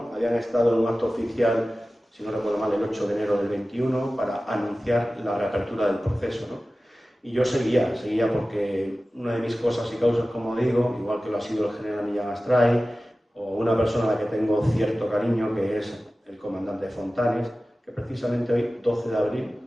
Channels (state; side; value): normal; both; correlation 0.96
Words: Habían estado en un acto oficial, si no recuerdo mal, el 8 de enero del 21, para anunciar la reapertura del proceso, ¿no? Y yo seguía porque una de mis cosas y causas, como digo, igual que lo ha sido el general Millán Astray, o una persona a la que tengo cierto cariño, que es el comandante Fontanes, que precisamente hoy, 12 de abril,